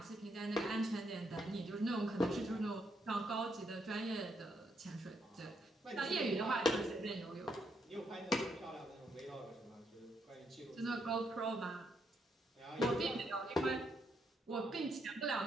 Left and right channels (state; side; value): normal; both; correlation 0.77